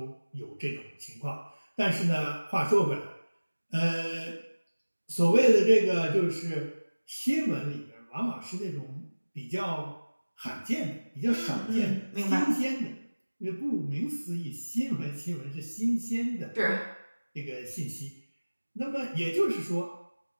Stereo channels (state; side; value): inverted; both; correlation -1.00